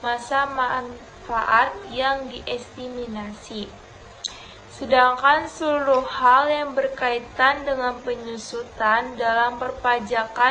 masa manfaat yang diestimasi. Sedangkan seluruh hal yang berkaitan dengan penyusutan dalam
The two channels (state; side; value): identical; both; correlation 1.00